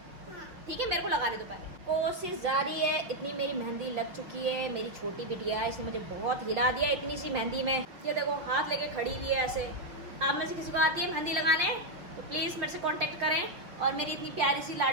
ठीक है। मेरे को लगाने दो पहले। कोशिश जारी है। इतनी मेरी मेहंदी लग चुकी है। मेरी छोटी बिटिया है, इसने मुझे बहुत हिला दिया इतनी सी मेहंदी में। ये देखो हाथ लेके खड़ी हुई है ऐसे। आप में से किसी को आती है मेहंदी लगाने तो प्लीज़ मेरे से कांटेक्ट करें। और मेरी इतनी प्यारी सी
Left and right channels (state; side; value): late; left; 6.0 ms